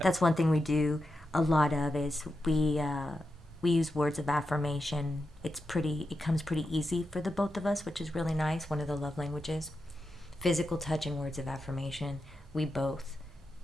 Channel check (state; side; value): normal; both; correlation 0.88